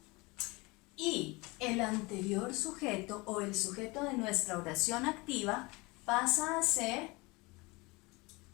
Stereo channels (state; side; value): quieter; right; 24.9 dB